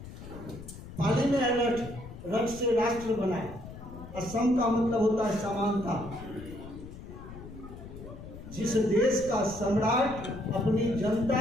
पाली में है रथ, रथ से राष्ट्र बनाए। असम का मतलब होता है समानता। जिस देश का सम्राट अपनी जनता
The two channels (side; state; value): left; noise; rumble, 13 dB below the sound